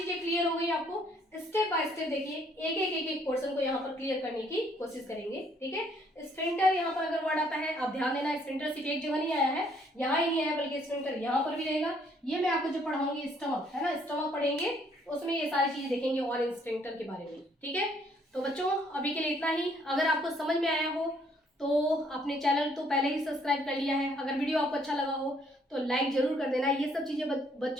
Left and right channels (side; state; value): both; normal; correlation 0.66